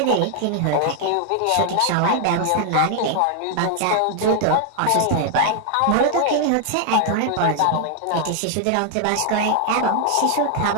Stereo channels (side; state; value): both; different; correlation 0.00